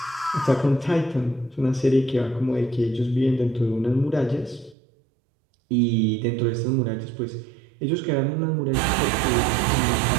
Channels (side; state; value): left; drops out; at 4.8 s